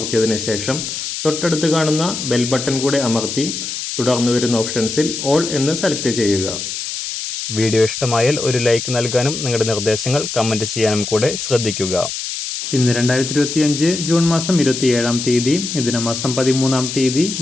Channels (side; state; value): left; noise; hiss, 5 dB below the sound